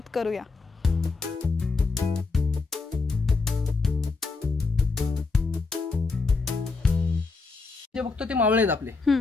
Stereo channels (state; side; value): quieter; right; 4.1 dB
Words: करूया। जे बघतो ते मावळे आहेत आपले।